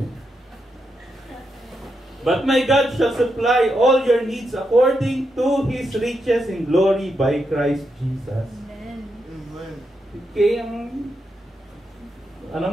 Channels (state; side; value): normal; both; correlation 0.84